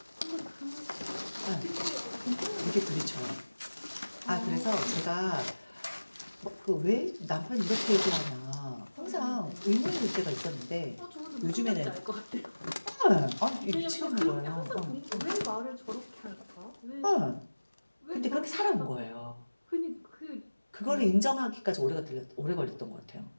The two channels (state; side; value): inverted; both; correlation -1.00